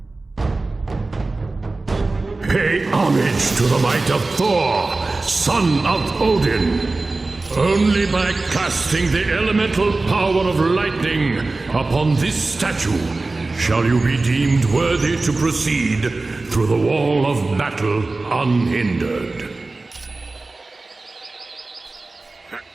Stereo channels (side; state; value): left; quieter; 3.4 dB